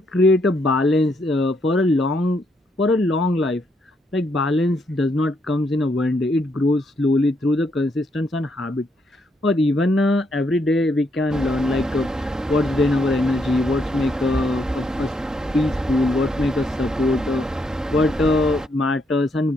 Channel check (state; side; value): normal; both; correlation 0.75